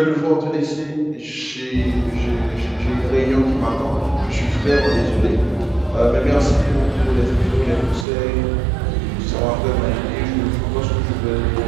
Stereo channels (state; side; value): drops out; left; at 8.1 s